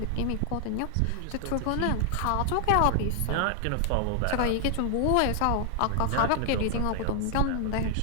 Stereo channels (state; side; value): different; both; correlation 0.00